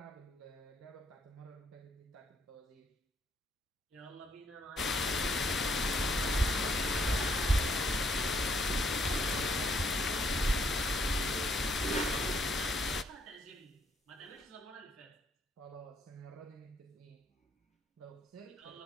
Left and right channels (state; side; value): normal; both; correlation 0.70